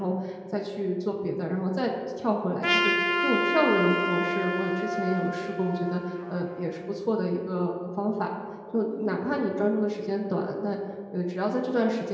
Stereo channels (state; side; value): identical; both; correlation 1.00